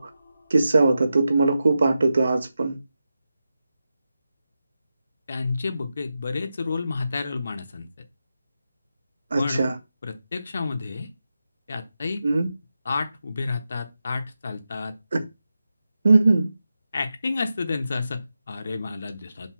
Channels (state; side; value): inverted; both; correlation -0.90